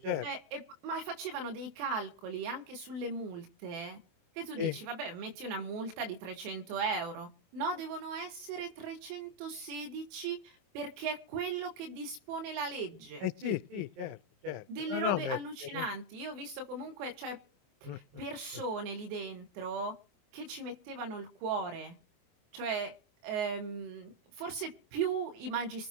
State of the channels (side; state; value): left; late; 24 ms